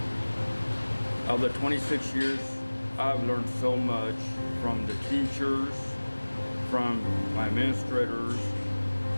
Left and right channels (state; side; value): inverted; both; correlation -1.00